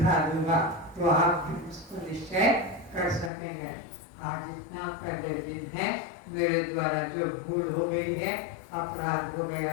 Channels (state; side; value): drops out; right; at 3.3 s